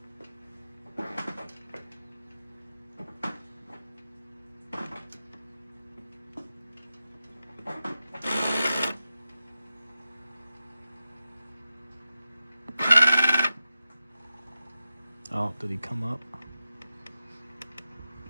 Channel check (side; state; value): both; inverted; correlation -0.92